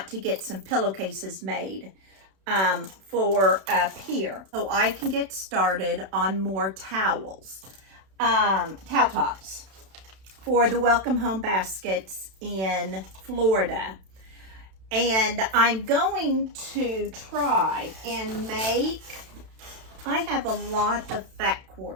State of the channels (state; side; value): late; left; 32 ms